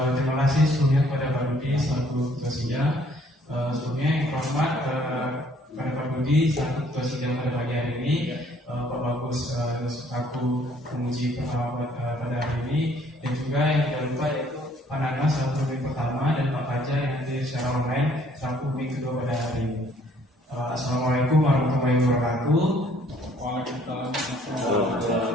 Terima kasih sebelumnya kepada Pak Budi selaku ketua sidang. Sebelumnya yang hormat pada Pak Budi selaku ketua sidang pada pagi hari ini, Pak Bagus selaku penguji pertama pada hari ini, dan juga yang tidak lupa yaitu Pak Nana selaku pembimbing pertama dan Pak Fajar yang hadir secara online selaku pembimbing kedua pada hari ini. Assalamualaikum warahmatullahi wabarakatuh. Waalaikumsalam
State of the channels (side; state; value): both; normal; correlation 0.61